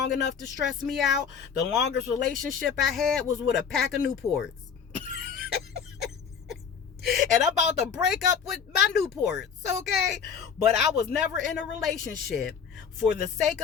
enough to stress me out. The longest relationship I had was with a pack of Newports. And I'm about to break up with my Newports, okay? But I was never in a relationship for the sake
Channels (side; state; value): right; quieter; 6.9 dB